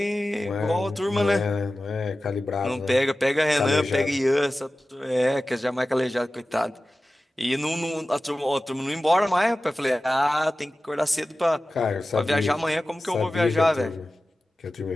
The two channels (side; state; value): both; normal; correlation 0.95